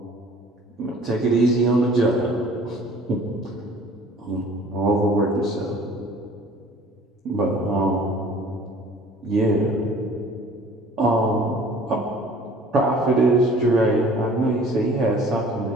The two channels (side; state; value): both; normal; correlation 0.50